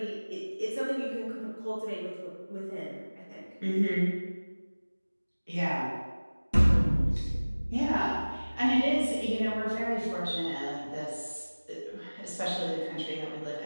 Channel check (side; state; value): both; inverted; correlation -1.00